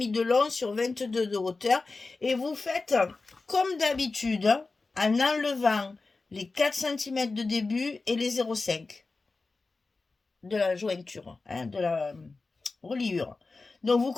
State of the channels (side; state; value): right; quieter; 3.8 dB